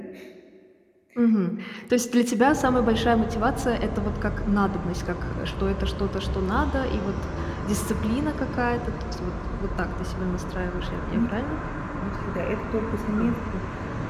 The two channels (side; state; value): both; identical; correlation 1.00